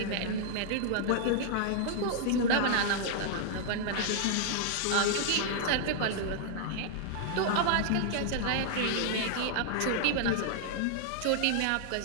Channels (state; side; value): different; both; correlation -0.01